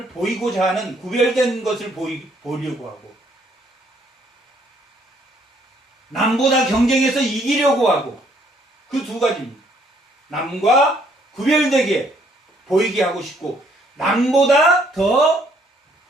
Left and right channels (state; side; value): normal; both; correlation 0.66